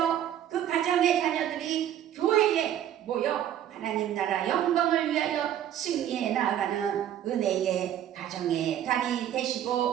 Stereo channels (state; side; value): quieter; left; 10.9 dB